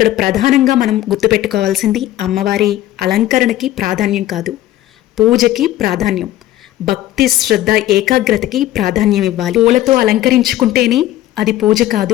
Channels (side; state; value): right; quieter; 14.5 dB